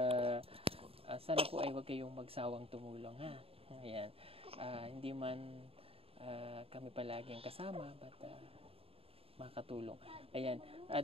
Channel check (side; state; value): left; late; 0.28 ms